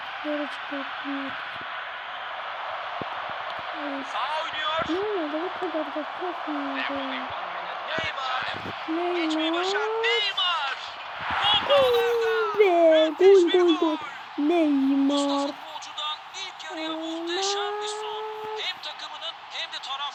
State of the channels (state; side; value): identical; both; correlation 1.00